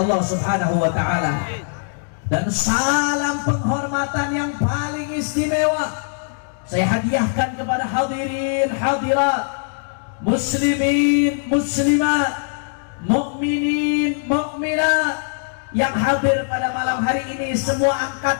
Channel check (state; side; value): silent; right; digital silence